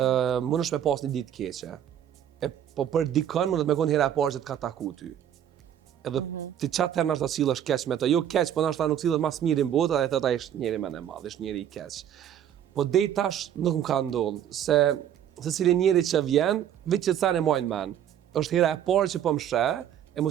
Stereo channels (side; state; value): left; quieter; 10.1 dB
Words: mund është me pas një ditë keqe. Po për dikën mund të me konë hera e parë që të ka taku ty. Edhe ti qatë herë nështë ta sillesh keq me të, jo keq, po nështë ta nuk sillet mas mirë në botë, edhe ta ishtë njeri me në madhë, ishtë njeri i keq. Po dej tash nuk më ka ndodhë, se cili njeri që vjen, vetë që të thane majnë men. Është hera e parë që po më shë, e